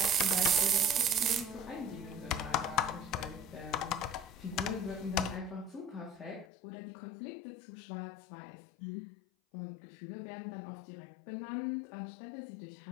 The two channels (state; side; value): drops out; right; at 6.5 s